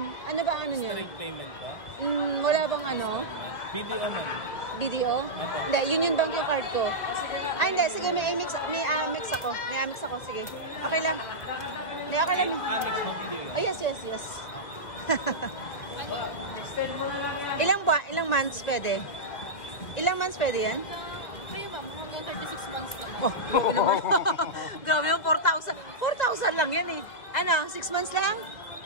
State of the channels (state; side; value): late; right; 2.0 ms